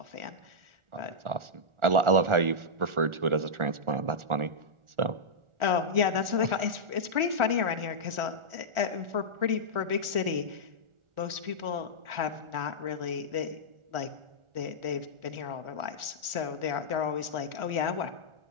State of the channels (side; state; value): left; late; 1.4 ms